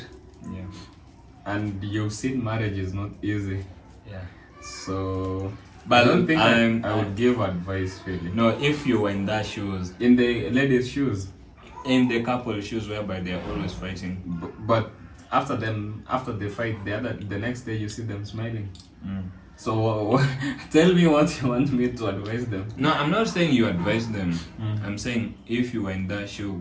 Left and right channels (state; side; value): identical; both; correlation 1.00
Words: Yeah. And you've seen marriage is not easy. Yeah. So, but I don't think I would give advice really. No, if you were in that shoes, in the ladies' shoes, in the couple shoes whereby they're always fighting. But after they fight, the next day you see them smiling. So tell me what you want me to advise them. No, I'm not saying you advise them. I'm saying if you were in that shoe,